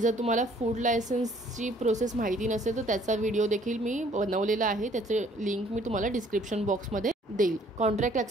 तुम्हाला फूड लायसन्सची प्रोसेस माहिती नसेल तर त्याचा व्हिडिओ देखील मी बनवलेला आहे, त्याचे लिंक मी तुम्हाला डिस्क्रिप्शन बॉक्समध्ये देईल. कॉन्ट्रॅक्ट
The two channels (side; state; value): both; normal; correlation 0.59